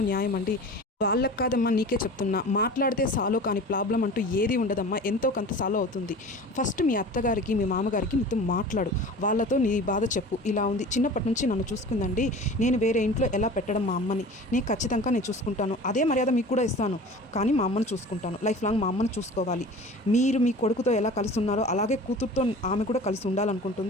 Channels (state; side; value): normal; both; correlation 0.39